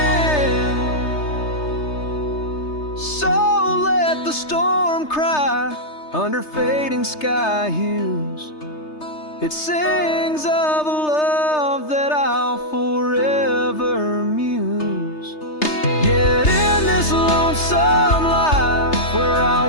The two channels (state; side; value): late; right; 3.3 ms